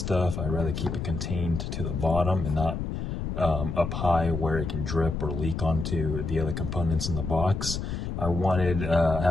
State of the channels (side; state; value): left; noise; rumble, 4 dB below the sound